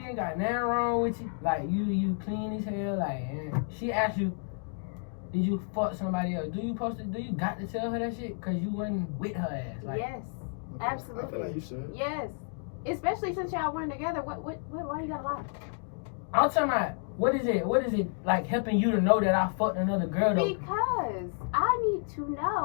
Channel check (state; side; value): silent; right; 57 dB below the other